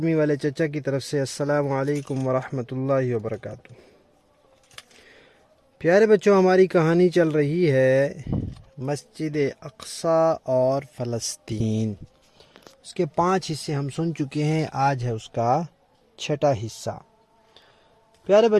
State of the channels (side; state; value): both; identical; correlation 1.00